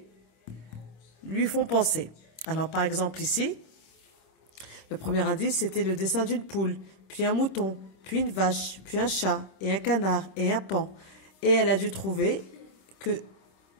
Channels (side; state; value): right; late; 26 ms